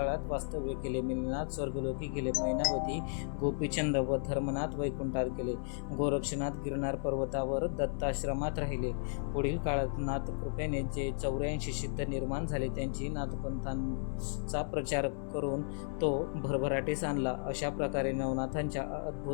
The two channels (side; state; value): right; silent; 55 dB below the other